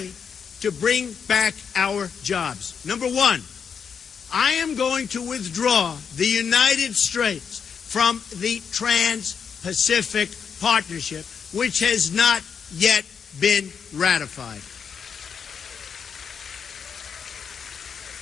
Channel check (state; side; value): quieter; right; 6.7 dB